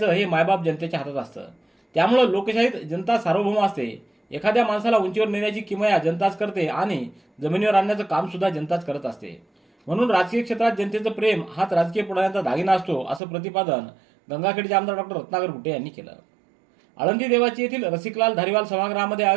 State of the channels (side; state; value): left; drops out; at 13.2 s